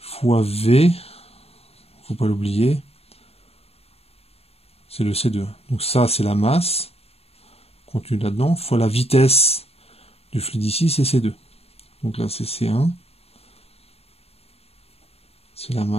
V, faut pas l'oublier, c'est le C2. Donc ça, c'est la masse contenue là-dedans, fois la vitesse du fluide ici, c'est C2. Donc là, c'est C1. C'est la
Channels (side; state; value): right; late; 0.29 ms